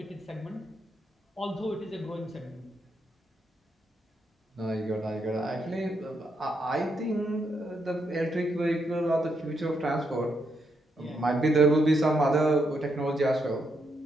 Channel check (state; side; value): normal; both; correlation 0.79